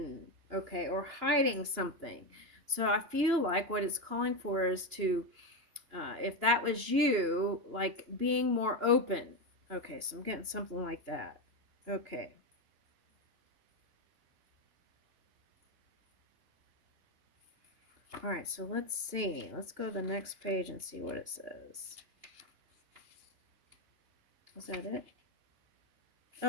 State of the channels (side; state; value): left; late; 2.9 ms